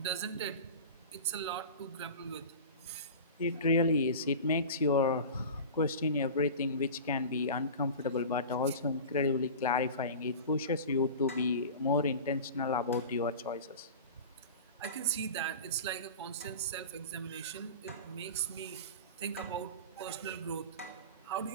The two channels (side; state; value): both; inverted; correlation -0.33